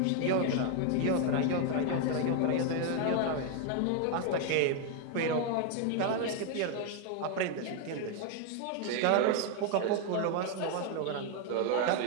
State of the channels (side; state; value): both; different; correlation 0.01